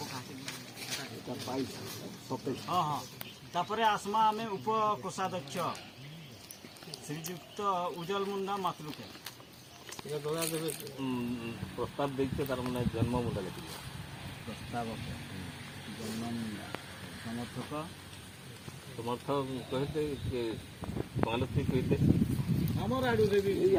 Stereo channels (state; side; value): identical; both; correlation 1.00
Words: हाँ हाँ तापरे आसमा में उप कोषाध्यक्ष श्रीजुक्त उज्जवल मुंडा मातलुके प्रस्ताव देखते तार माने जन्म मुंडा लेखि प्रस्ताव जन्म मुंडा समर्थक कहते कि पॉलिसी कहते हमर आडू रे भी